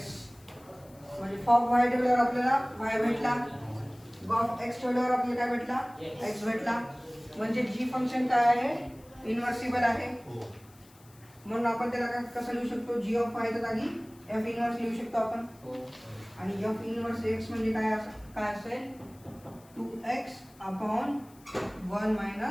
म्हणजे फॉग y ठेवल्यावर आपल्याला y भेटला. गॉफ x ठेवल्यावर आपल्याला काय भेटला? x भेटला. म्हणजे g फंक्शन काय आहे? इन्व्हर्सिबल आहे. म्हणून आपण त्याला कसं लिहू शकतो? g ऑफ y च्या जागी f इन्व्हर्स लिहू शकतो आपण. आणि f इन्व्हर्स x म्हणजे काय असेल? 2x upon 1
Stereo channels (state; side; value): noise; left; hiss, 27 dB below the sound